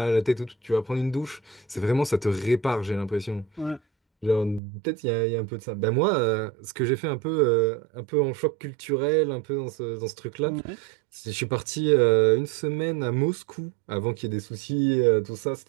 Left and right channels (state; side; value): drops out; left; at 4.6 s